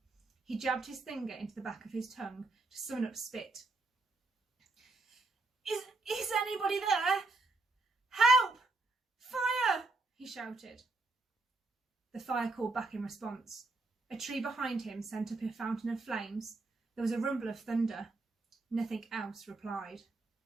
He jabbed his finger into the back of his tongue to summon up spit. Is anybody there? Help! Fire! He shouted. The fire called back in response. A tree behind him sent up a fountain of flames. There was a rumble of thunder. Nothing else replied.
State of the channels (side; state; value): left; quieter; 3.3 dB